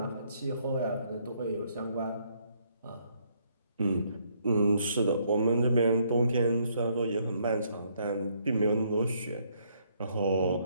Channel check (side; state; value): both; inverted; correlation -0.70